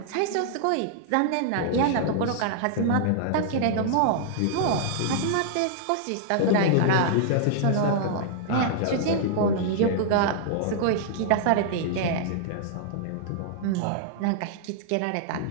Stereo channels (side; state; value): both; different; correlation -0.01